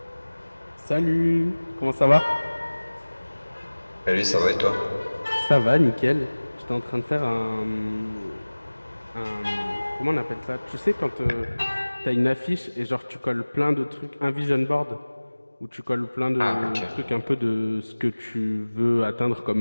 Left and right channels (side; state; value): both; inverted; correlation -1.00